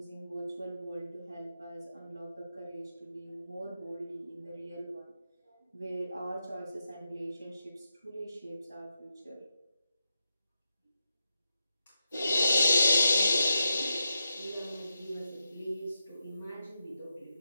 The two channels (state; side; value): inverted; both; correlation -0.87